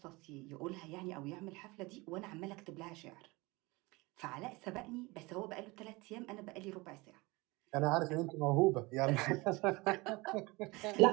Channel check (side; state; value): left; quieter; 23.8 dB